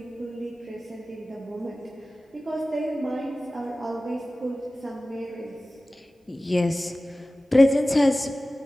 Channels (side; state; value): both; normal; correlation 0.96